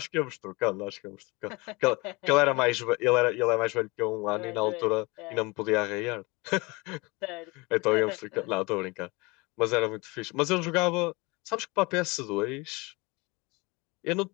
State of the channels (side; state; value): right; quieter; 25.4 dB